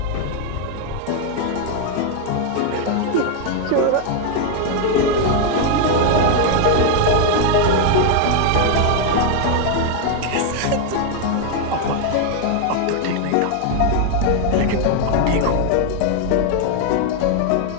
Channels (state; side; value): different; both; correlation 0.01